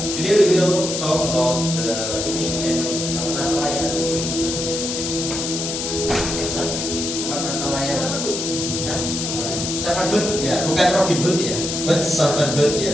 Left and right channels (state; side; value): noise; left; hiss, 3 dB below the sound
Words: Today we will talk about the English and Natal layan atau di English. Natal layan. Servant Hood ya, bukan Robin Hood ya, but Servant Hood